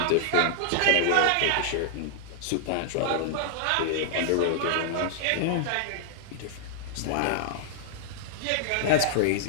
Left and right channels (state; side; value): different; both; correlation -0.01